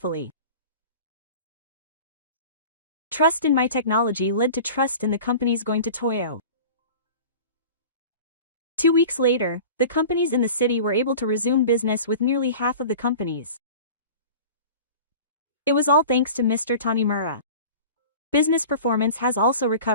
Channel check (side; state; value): both; inverted; correlation -0.38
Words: Trust in my technology led to trust in the companies going to Toyo. 2 weeks later, the companies in the city were able to resume business with nearly half of the companies. It was all thanks to Mr. Tanimura. Business performance has also